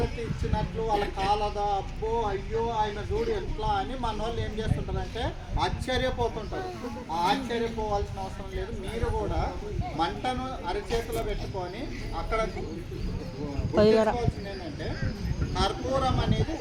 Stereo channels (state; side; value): identical; both; correlation 1.00